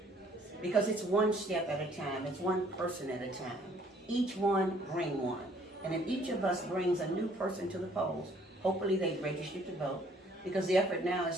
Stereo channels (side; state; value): both; normal; correlation 0.60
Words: because it's one step at a time. It's one person at a time. Each one bring one. And if each of us brings a new person to the polls, hopefully they've registered to vote, because the effort now